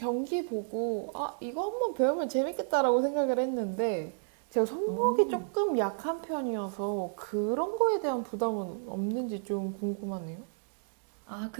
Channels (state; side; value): silent; left; digital silence